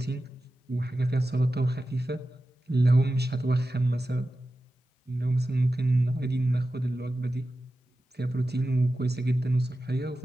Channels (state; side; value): normal; both; correlation 0.93